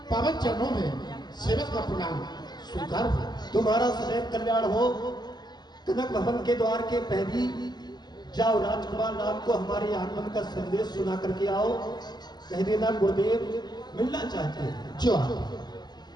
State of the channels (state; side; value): late; right; 0.20 ms